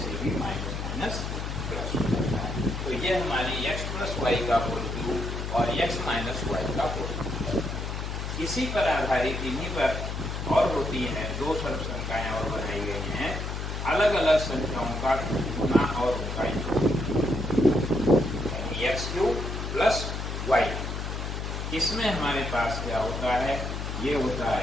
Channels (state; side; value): noise; left; hum, 4 dB below the sound